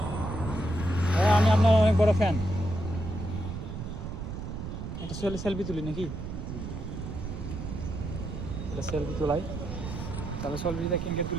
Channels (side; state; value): right; noise; rumble, 6 dB below the sound